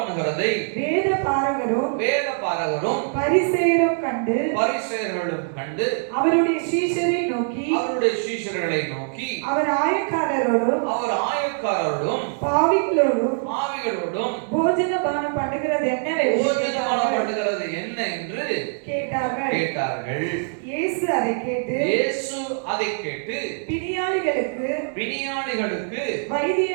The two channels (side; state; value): left; silent; 63 dB below the other